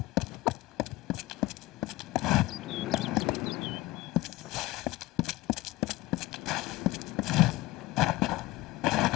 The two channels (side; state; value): right; quieter; 18.5 dB